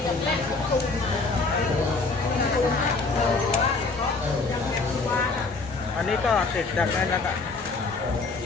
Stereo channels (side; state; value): right; quieter; 3.9 dB